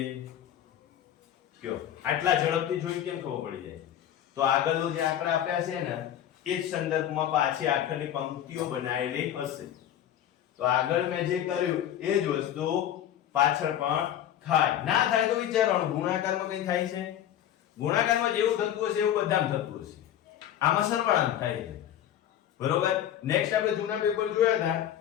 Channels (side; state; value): right; quieter; 10.9 dB